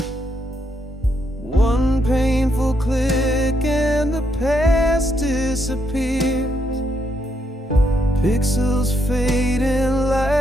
One painful click and the past disappears. Pixels fading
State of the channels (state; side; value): normal; both; correlation 0.77